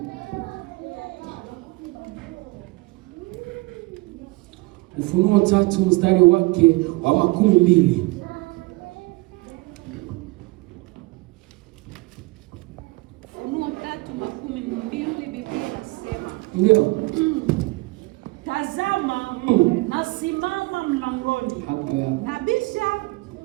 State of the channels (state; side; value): quieter; left; 23.8 dB